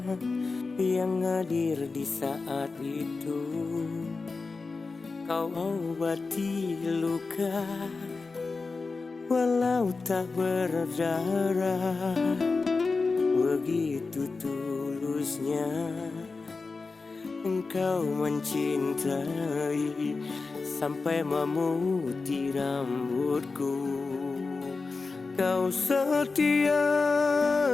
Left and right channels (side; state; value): right; quieter; 4.1 dB